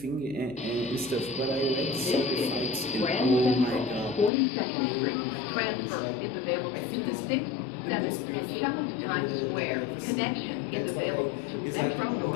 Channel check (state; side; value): drops out; right; at 4.3 s